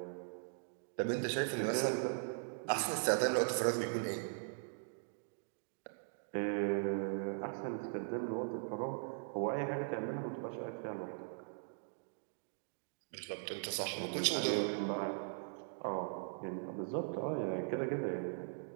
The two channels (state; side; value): silent; left; digital silence